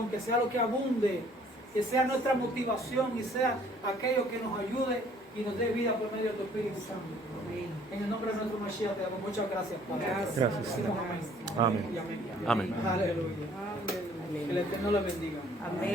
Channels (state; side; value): normal; both; correlation 0.58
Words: que sea lo que abunde, que sea nuestra motivación y sea aquello que nos ayude y nos dé vida por medio de tu Espíritu Santo. En el nombre de nuestro Mashiach te damos muchas gracias, Padre. Gracias. Decimos Amén. Y amén. Amén. Aleluya. Que el Eterno le bendiga.